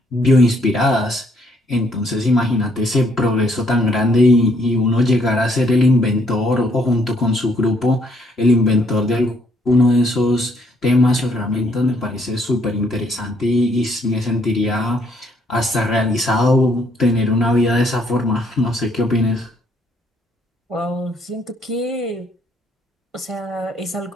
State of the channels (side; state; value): both; normal; correlation 0.68